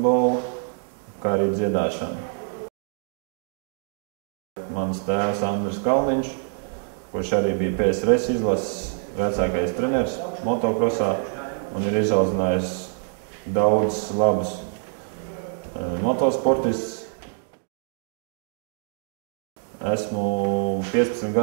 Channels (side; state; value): left; silent; 57 dB below the other